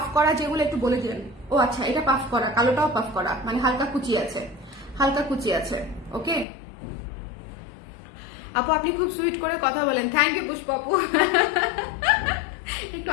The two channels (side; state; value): right; drops out; at 6.5 s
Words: করা যেগুলো একটু বলে দিবেন। ও আচ্ছা, এটা পাফ করা, কালোটাও পাফ করা, মানে হালকা কুচি আছে, ওকে। আপু আপনি খুব সুইট করে কথা বলেন, থ্যাংক ইউ পুষ্প আপু। একটু